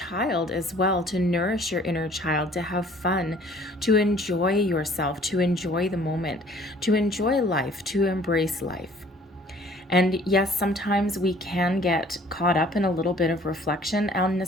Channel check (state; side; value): normal; both; correlation 0.54